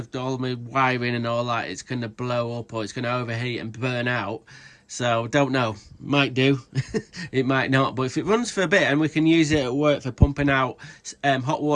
all my wiring and all that. It's going to blow up or it's going to overheat and burn out. So don't know, might do. It might not, but if it runs for a bit and we can use it at work for pumping out hot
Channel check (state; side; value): identical; both; correlation 1.00